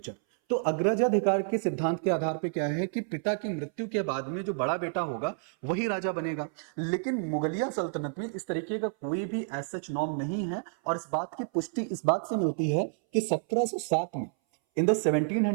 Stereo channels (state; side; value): silent; left; 58 dB below the other